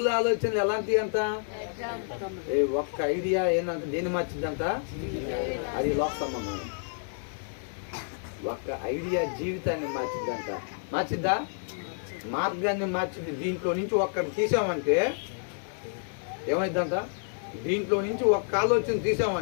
ఆలోచనలు ఎలాంటివి అంట? ఒక్క ఐడియా ఏంటంట దేన్ని మార్చిద్దంట? అది లోక సంబంధం. ఒక్క ఐడియా జీవితాన్ని మార్చిద్దంట. మార్చిద్దా? మార్గాన్ని మార్చింది. దీంట్లో నుంచి ఒక్కటి తీసామంటే ఏమైందంట? దీంట్లో నుంచి ఒక్క ఆలోచన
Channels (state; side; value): silent; right; 58 dB below the other